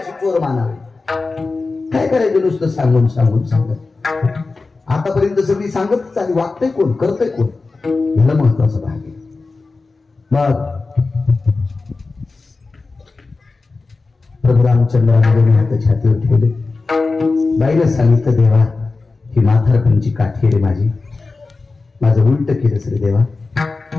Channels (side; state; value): right; quieter; 3.8 dB